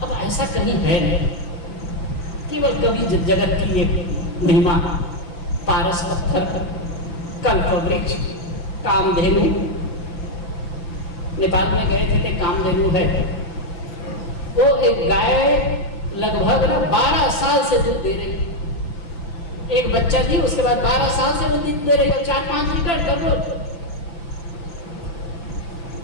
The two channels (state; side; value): late; right; 5.9 ms